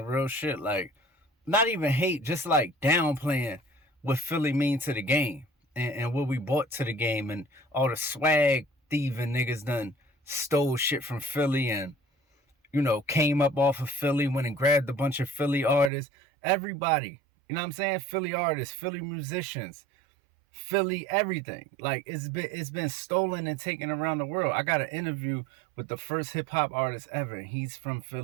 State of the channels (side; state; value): left; drops out; at 15.9 s